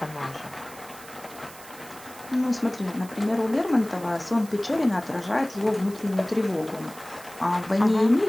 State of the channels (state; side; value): noise; right; hiss, 18 dB below the sound